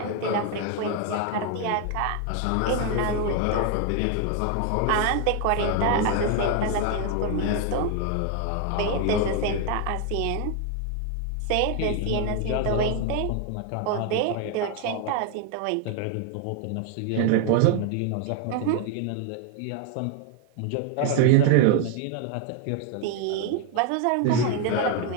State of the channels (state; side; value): different; both; correlation 0.01